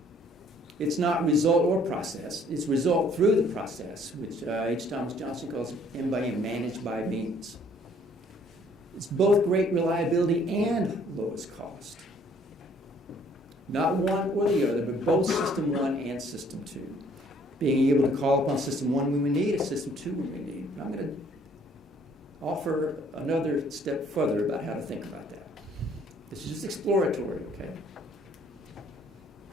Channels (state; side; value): normal; both; correlation 0.60